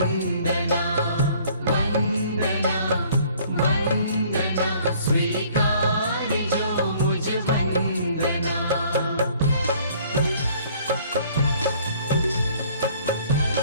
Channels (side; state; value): both; inverted; correlation -0.57